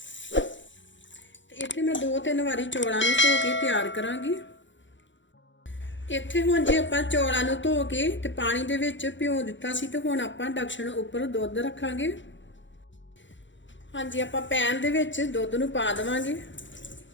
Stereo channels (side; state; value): right; late; 0.54 ms